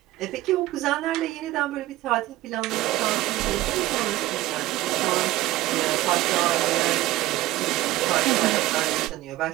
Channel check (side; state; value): left; quieter; 16.7 dB